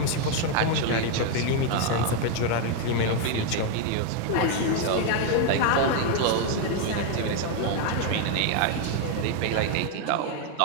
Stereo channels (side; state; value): both; different; correlation 0.01